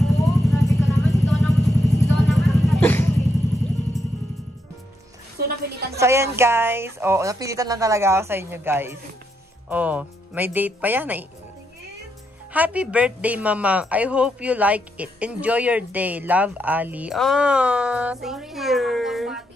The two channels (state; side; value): normal; both; correlation 0.79